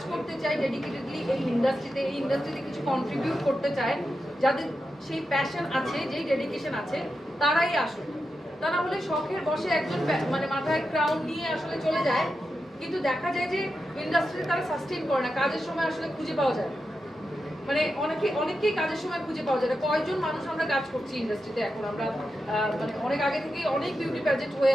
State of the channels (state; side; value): normal; both; correlation 0.89